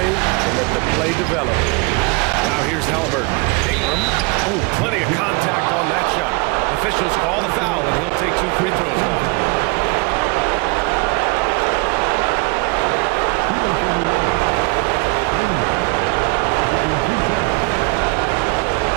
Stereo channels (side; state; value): left; quieter; 28.2 dB